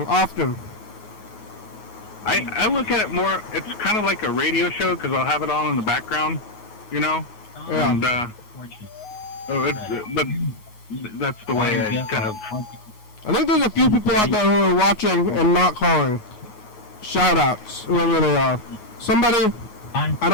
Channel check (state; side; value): late; right; 9.4 ms